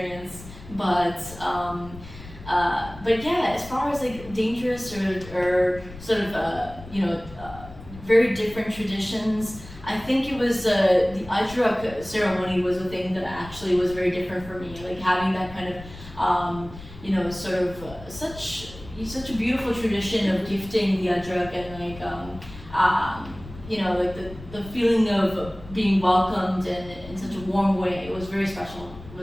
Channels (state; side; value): noise; left; rumble, 16 dB below the sound